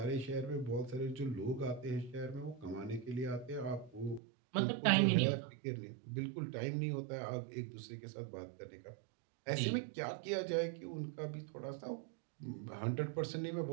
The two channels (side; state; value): left; drops out; at 4.2 s